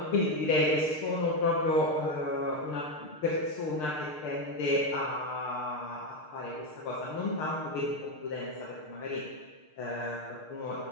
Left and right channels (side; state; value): right; late; 6.6 ms